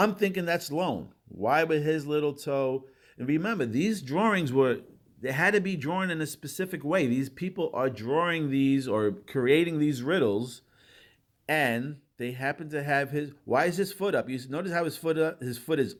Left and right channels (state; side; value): identical; both; correlation 1.00